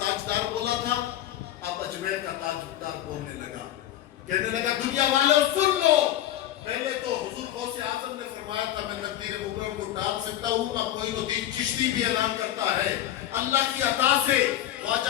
بولا تھا، اب اجمیر کا تاجدار بولنے لگا، کہنے لگا دنیا والوں سن لو، پہلے تو حضور غوث اعظم نے فرمایا تھا میں تقدیر مبارک کو ٹال سکتا ہوں، اب معین الدین چشتی بھی اعلان کرتا ہے اللہ کی عطا سے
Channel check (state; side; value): quieter; right; 12.7 dB